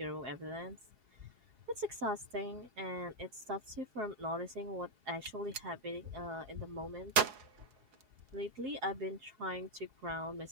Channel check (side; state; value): left; late; 4.7 ms